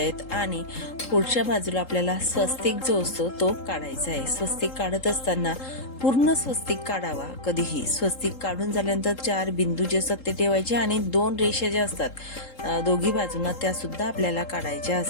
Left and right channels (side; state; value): right; late; 3.8 ms